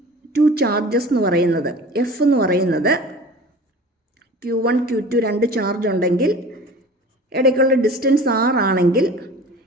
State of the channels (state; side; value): normal; both; correlation 0.40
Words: two charges എന്ന് പറയുന്നത് എഫ് എന്ന് പറയുന്നത് Q1 Q2 രണ്ട് ചാർജ് ഉണ്ടെങ്കിൽ ഇടയ്ക്കുള്ള ഡിസ്റ്റൻസ് R ആണെങ്കിൽ